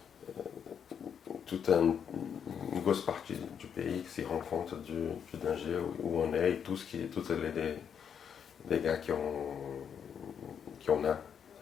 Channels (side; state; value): right; quieter; 7.8 dB